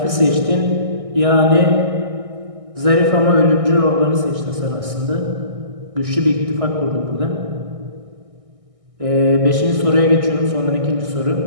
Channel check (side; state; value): left; late; 1.6 ms